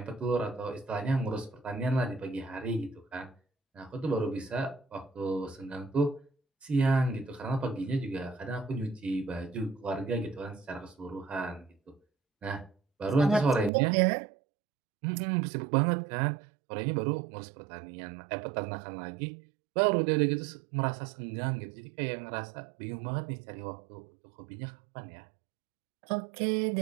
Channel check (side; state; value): left; drops out; at 13.7 s